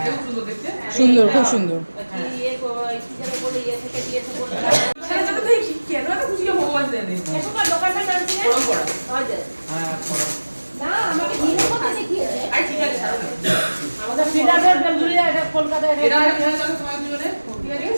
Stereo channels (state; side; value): inverted; both; correlation -1.00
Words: খুব সুন্দর দেখতে। সুন্দর, খুব সুন্দর। ইয়ে কি যেন বলে ইয়ে থেকে দিয়েছে বলে। সেটা তো দেখি কেন এত খুশি ভগবান জানে। এসব দোকানটা নাম কি? পরম্পরা। হ্যাঁ না আমাকে দিনের কথা দেখিয়েছে। আর ঠিক আছে ছাড়ো না। আমাদের ফিডারের বেলগুড়িয়া এটা কলকাতায় এটা খেলা চলো তোমার দুজনে। ঠিক আছে